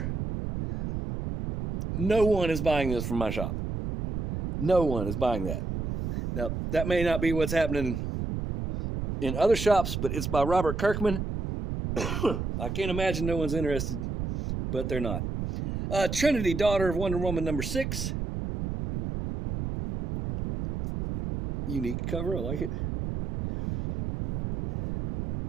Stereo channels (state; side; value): noise; right; rumble, 4 dB below the sound